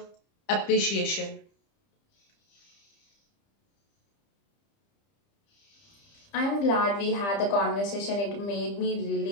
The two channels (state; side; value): late; right; 30 ms